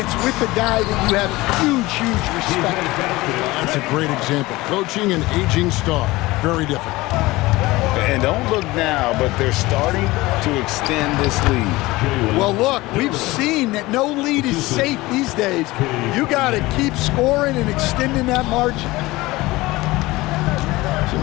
it's with a guy that you have huge respect for. That's a great example. Coaching an aging star, very difficult. And don't look now, but they're starting to extend this lead. Well, look, we've seen that no lead is safe these days. You got to keep scoring and extending that margin. Some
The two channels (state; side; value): quieter; right; 20.0 dB